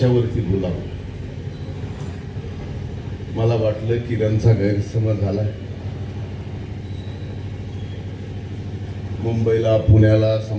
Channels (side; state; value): both; identical; correlation 1.00